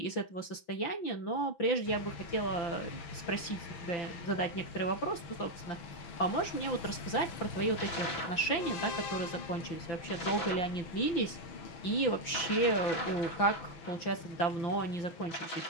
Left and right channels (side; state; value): right; late; 5.8 ms